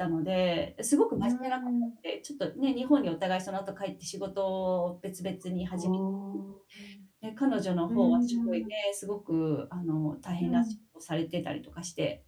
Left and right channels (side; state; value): both; identical; correlation 1.00